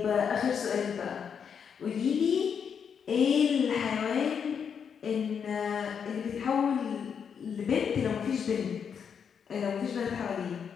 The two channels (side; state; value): right; quieter; 7.1 dB